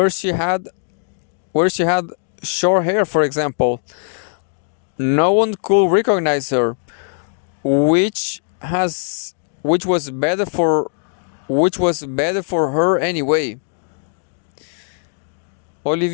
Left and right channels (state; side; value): silent; right; digital silence